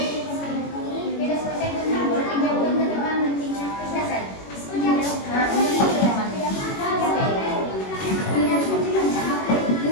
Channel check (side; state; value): right; late; 21 ms